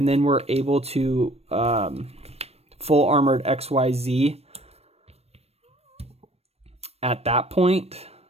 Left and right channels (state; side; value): late; left; 0.30 ms